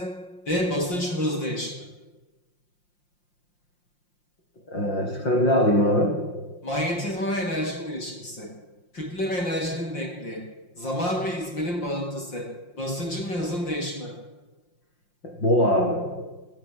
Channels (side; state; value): right; late; 5.7 ms